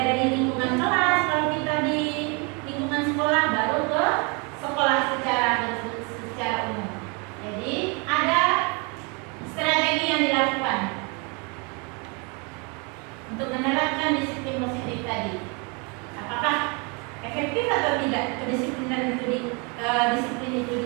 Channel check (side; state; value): left; quieter; 32.2 dB